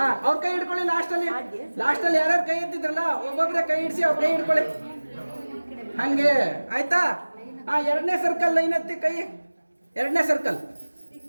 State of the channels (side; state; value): both; inverted; correlation -1.00